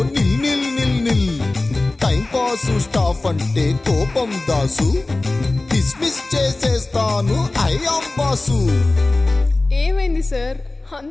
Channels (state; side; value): quieter; right; 3.0 dB